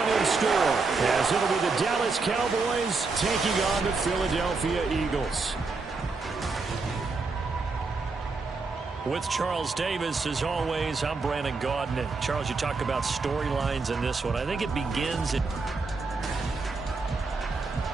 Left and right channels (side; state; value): left; quieter; 4.1 dB